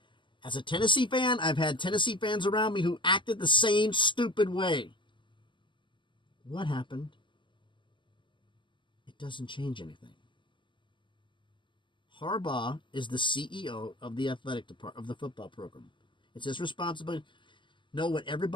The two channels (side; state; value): right; late; 0.24 ms